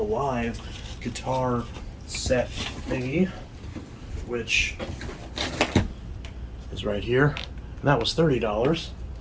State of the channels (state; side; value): identical; both; correlation 1.00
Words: Live guitar set thingy, which is right here. And that was $30,